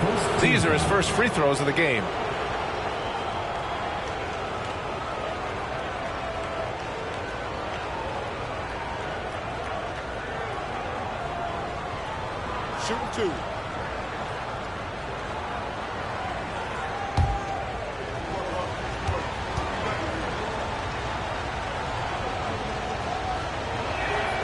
These are his first free throws of the game. Shooting 2.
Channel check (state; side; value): identical; both; correlation 1.00